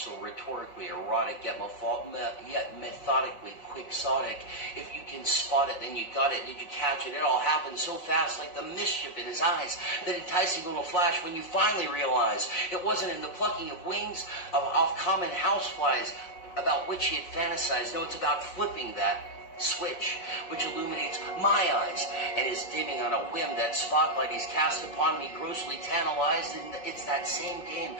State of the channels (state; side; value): late; right; 5.6 ms